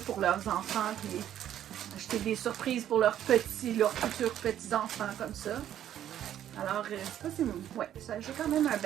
pour leurs enfants, puis acheter des surprises pour leurs futurs petits-enfants comme ça. Alors, ça c'est ouais, j'ai quand même un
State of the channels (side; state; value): left; quieter; 11.0 dB